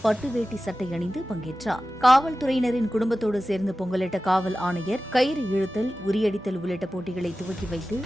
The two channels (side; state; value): both; normal; correlation 0.95